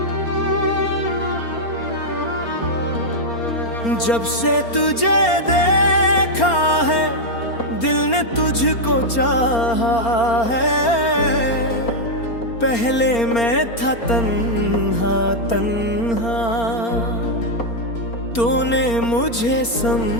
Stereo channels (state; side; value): late; right; 4.3 ms